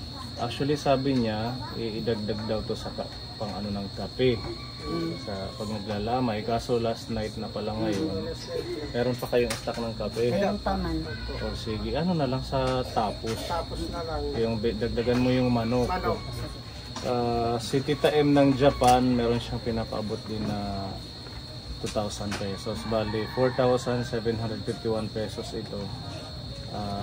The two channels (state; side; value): identical; both; correlation 1.00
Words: Actually, sabi niya, idagdag daw to sa pang ng kape. Sa pag naglalamay. Kaso last night na pala ngayon, meron pa kayong stock ng kape. Meron pa man. O sige, na lang sa tapos. Tapos na lang. Yung dagdagan mo yung manok. Si Tita M ng Japan, meron siyang pinapaabot din na 2,000 pesos. Bali, 4,751 pesos ito.